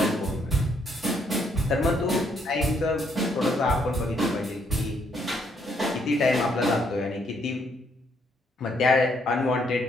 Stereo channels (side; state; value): both; normal; correlation 0.72